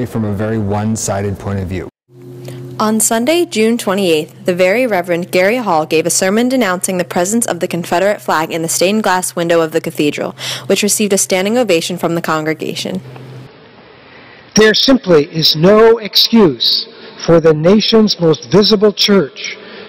from a very one-sided point of view. On Sunday, June 28th, the Very Reverend Gary Hall gave a sermon denouncing the presence of the Confederate flag in the stained glass window of the cathedral, which received a standing ovation from the congregation. There simply is no excuse for the nation's most visible church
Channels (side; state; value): both; identical; correlation 1.00